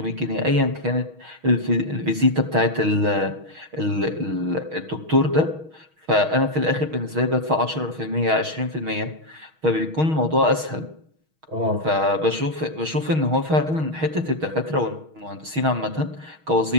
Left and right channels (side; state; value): left; late; 6.3 ms